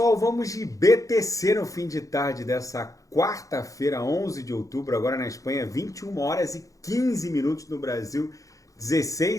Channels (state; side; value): late; right; 0.16 ms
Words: vamos de BTC no fim de tarde dessa quarta-feira, 11 de outubro, agora na Espanha, 21 horas e 15 minutos no Brasil,